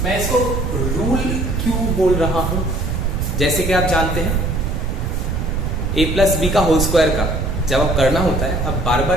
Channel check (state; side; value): noise; right; rumble, 1 dB below the sound